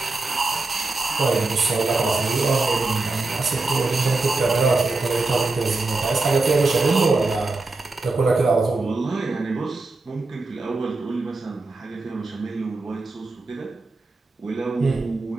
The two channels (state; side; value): quieter; left; 3.4 dB